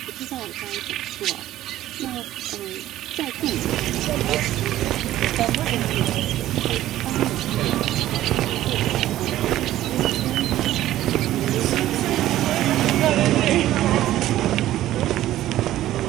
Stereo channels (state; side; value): quieter; left; 13.9 dB